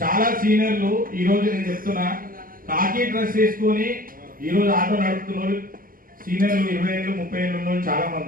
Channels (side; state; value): left; late; 0.41 ms